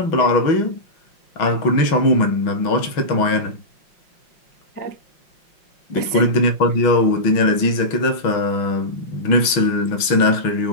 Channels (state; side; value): late; right; 6.2 ms